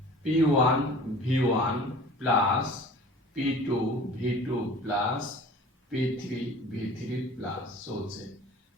P1 V1 plus P2 V2 plus P3 V3 plus চলছে।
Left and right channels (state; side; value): normal; both; correlation 0.44